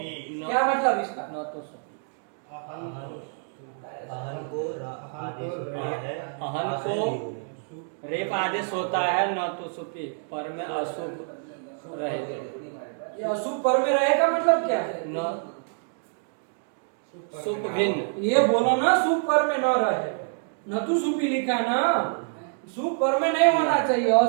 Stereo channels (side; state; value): left; silent; 60 dB below the other